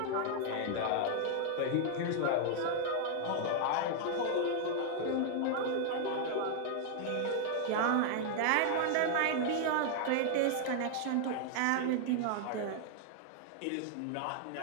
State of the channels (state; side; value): different; both; correlation 0.00